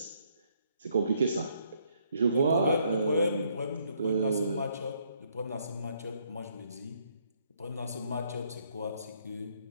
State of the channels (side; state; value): both; inverted; correlation -0.70